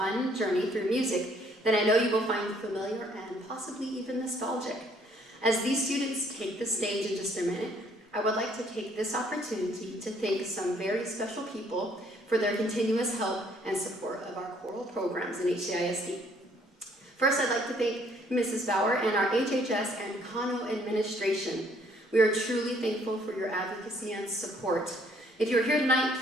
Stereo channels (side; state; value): both; normal; correlation 0.64